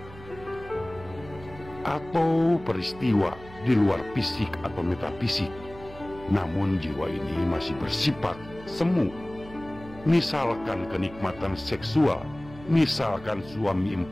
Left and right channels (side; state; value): right; noise; hum, 18 dB below the sound